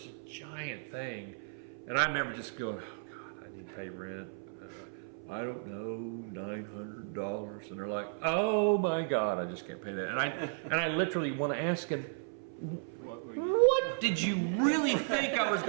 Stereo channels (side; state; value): left; silent; 55 dB below the other